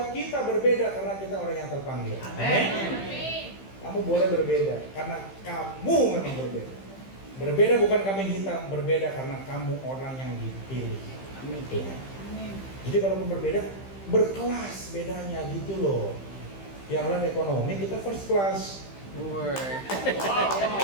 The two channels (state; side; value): late; right; 15 ms